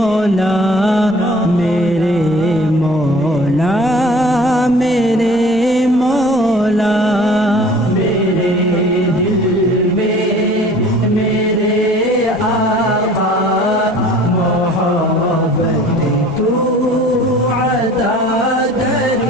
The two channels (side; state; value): both; normal; correlation 0.48